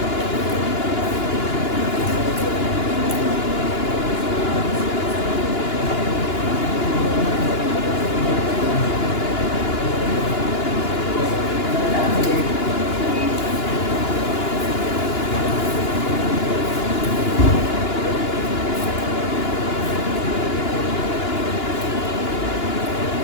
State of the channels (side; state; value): right; late; 2.9 ms